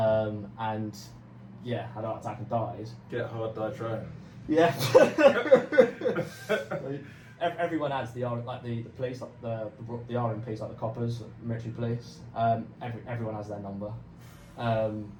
yeah, had a heart attack and died. Get hard, die trying. Yeah. Everyone adds the police, like the RMPs, like the coppers, like military police. Everyone has their number.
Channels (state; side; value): identical; both; correlation 1.00